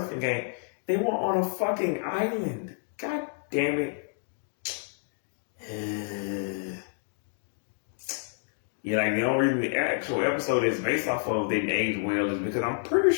game? They were on a fucking island. God damn it. Yeah, like the only reason the actual episode is based off of didn't age well is because I'm pretty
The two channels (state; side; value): silent; right; digital silence